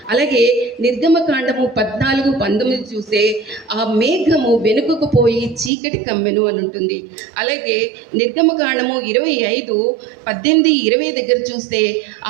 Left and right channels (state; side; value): drops out; left; at 5.7 s